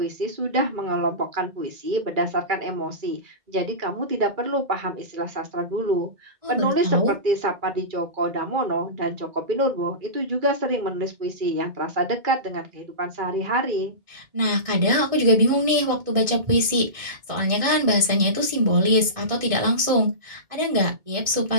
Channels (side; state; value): left; late; 2.2 ms